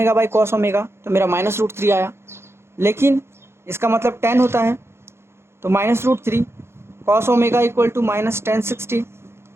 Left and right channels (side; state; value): left; late; 0.12 ms